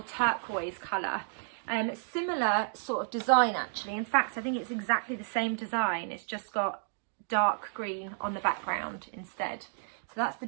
turquoise colour. Similar sort of design actually. In fact, I think it's exactly the same design. It's just got dark green on the background instead. So that's the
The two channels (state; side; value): silent; left; digital silence